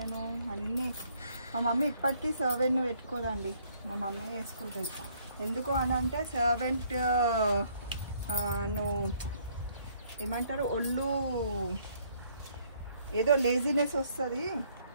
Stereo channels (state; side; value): inverted; both; correlation -0.65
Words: అన్నీ. మా మమ్మీ ఇప్పటికీ సర్వెంట్ను పెట్టుకోదండి, మా మమ్మీ వేసుకుంటుంది. ఎందుకు అని అంటే సర్వెంట్ నువ్వు ఏమంటారు, ఒళ్ళు ఏదో లేజినెస్ వస్తుంది,